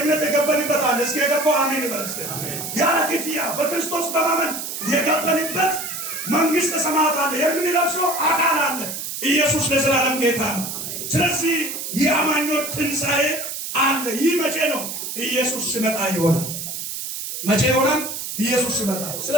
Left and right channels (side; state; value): right; noise; hiss, 6 dB below the sound